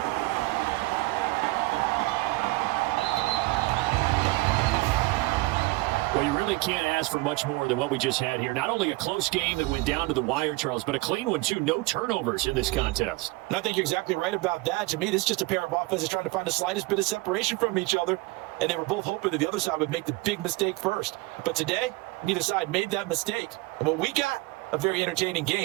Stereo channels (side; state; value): left; quieter; 21.9 dB